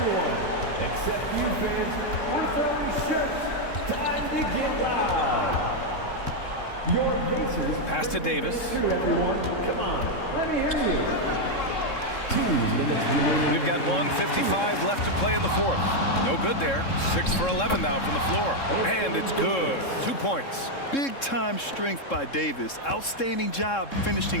everyone, except you fans, we're throwing shirts. Time to get loud. Your Pacers. Pass to Davis. Here, everyone. Come on, let me hear you. 2 minutes remaining. We've got 1:55 left to play in the 4th. No good there. 6 for 11 now from the floor. And it's good. 2 points. Big time strength by Davis. Outstanding job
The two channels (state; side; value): late; right; 3.7 ms